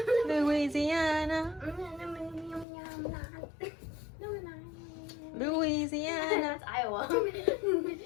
Louisiana. Louisiana. That's Iowa.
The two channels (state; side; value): drops out; right; at 2.7 s